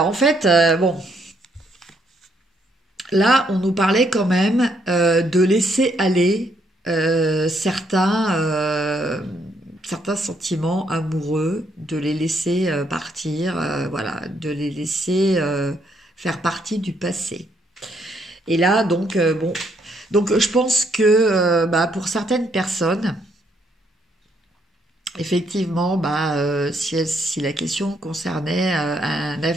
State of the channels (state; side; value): normal; both; correlation 0.72